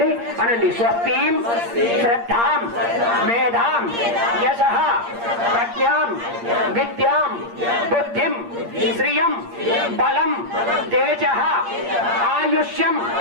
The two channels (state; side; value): late; left; 8.6 ms